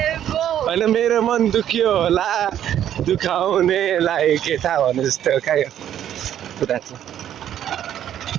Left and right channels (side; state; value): left; quieter; 10.7 dB